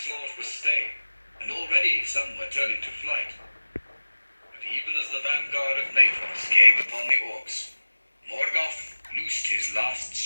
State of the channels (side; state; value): both; inverted; correlation -1.00